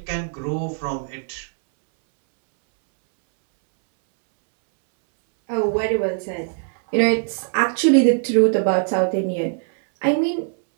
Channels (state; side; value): silent; left; 65 dB below the other